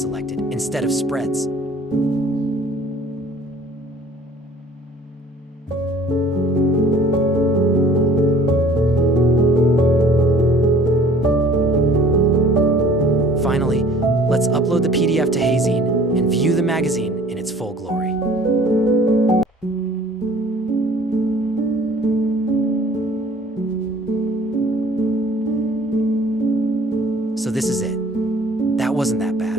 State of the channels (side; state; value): both; normal; correlation 0.51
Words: selected instead of spreads. Finally, let's upload the PDF to hazing and view the magazine in its full glory. So this is it. That wasn't that